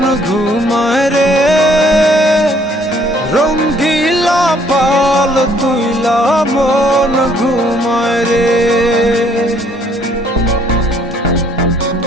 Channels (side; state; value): both; normal; correlation 0.63